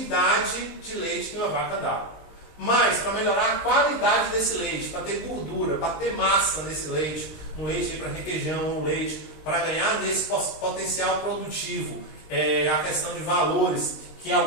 de leite que uma vaca dá. Mas, para melhorar a qualidade desse leite, para ter gordura, para ter massa nesse leite, um leite para requeijão, um leite para ganhar nesse potencial produtivo, a questão de valores que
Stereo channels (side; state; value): right; late; 19 ms